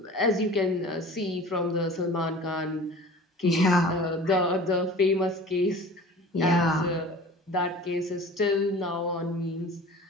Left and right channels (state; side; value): normal; both; correlation 0.41